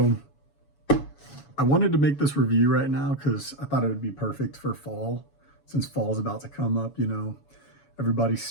I wanted to make this review right now because I thought it would be perfect for fall, since fall's about to come up. Everybody's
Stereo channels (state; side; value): late; right; 7.1 ms